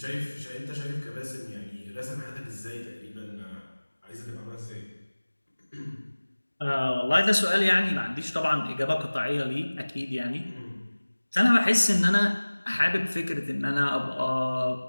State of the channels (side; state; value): both; inverted; correlation -1.00